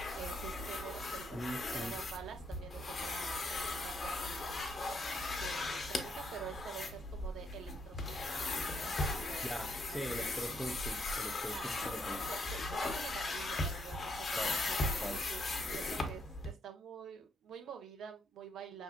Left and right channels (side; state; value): both; normal; correlation 0.75